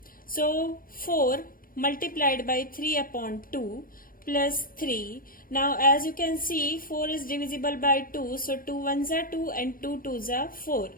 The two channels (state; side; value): late; right; 0.41 ms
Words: So 4 multiplied by 3 upon 2 plus 3. Now as you can see, 4 is divisible by 2. So 2 ones are 2 and 2 twos are 4.